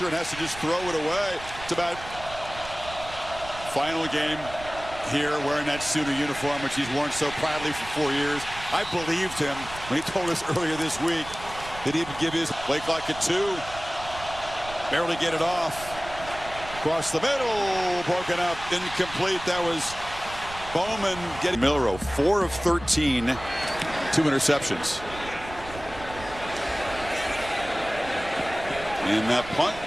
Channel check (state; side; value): noise; right; rumble, 14 dB below the sound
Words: and has to just throw it away. It's about final game here wearing that Sooner uniform, which he's worn so proudly for 4 years. I believed him when he told us earlier this week that he would give his play clock at 2. Barely get it off. Across the middle, broken up, incomplete. That was Bowman getting Milroe, 4 of 13, 2 interceptions. And that punt